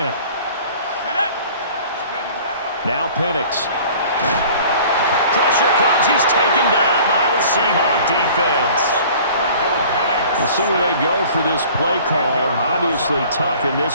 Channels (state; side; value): inverted; both; correlation -0.48